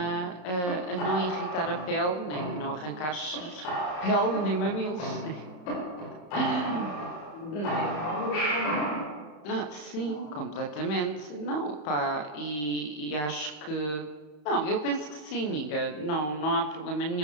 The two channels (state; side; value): late; right; 34 ms